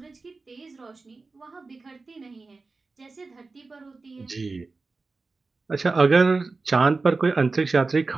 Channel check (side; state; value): left; quieter; 3.9 dB